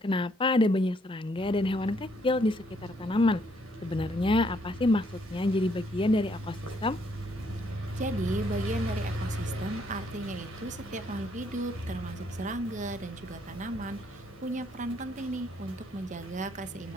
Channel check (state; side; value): normal; both; correlation 0.69